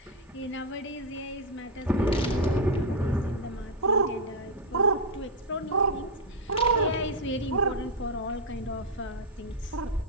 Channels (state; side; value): normal; both; correlation 0.02